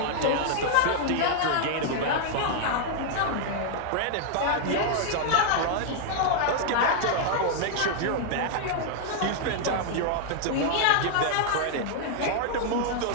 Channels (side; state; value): both; different; correlation -0.01